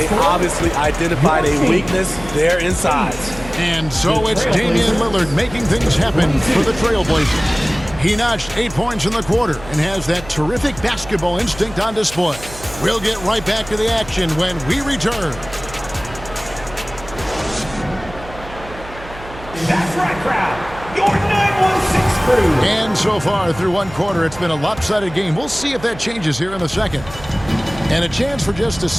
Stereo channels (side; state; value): right; noise; hum, 16 dB below the sound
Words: obviously identified a weakness there inside. And so it's Damian Lillard making things happen for the Trailblazers. He notched 8 points in the quarter and has that terrific basketball instinct on display. We'll get right back to the action when we return. That's right, crowd. Your 916 crew. And so far through one quarter, it's been a lopsided game. We'll see if that changes here in the second. And a chance for just a